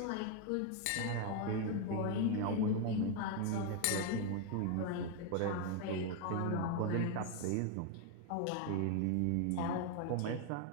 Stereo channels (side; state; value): both; different; correlation 0.01